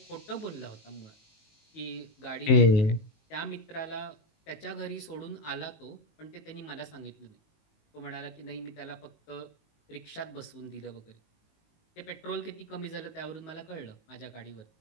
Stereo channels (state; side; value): late; right; 19 ms